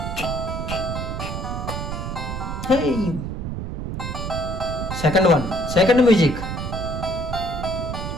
Second one, second music.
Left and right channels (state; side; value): noise; right; rumble, 5 dB below the sound